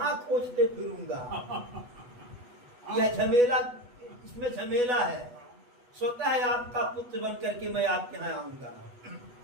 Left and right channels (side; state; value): left; late; 8.1 ms